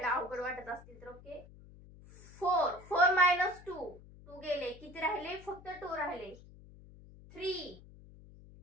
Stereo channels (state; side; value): noise; left; hum, 20 dB below the sound